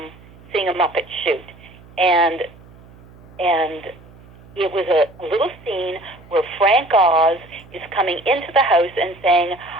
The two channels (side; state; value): right; noise; hum, 23 dB below the sound